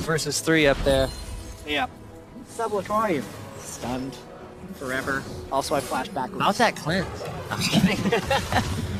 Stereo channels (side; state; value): both; identical; correlation 1.00